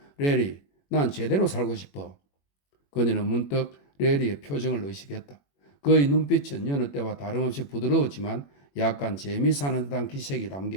레리, 난 제대로 살고 싶어. 그녀는 문득 레리의 표정을 의식했다. 그의 눈빛은 여느 때와 다름없이 부드러웠지만 약간 재미사는 듯한 기색이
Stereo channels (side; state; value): right; late; 21 ms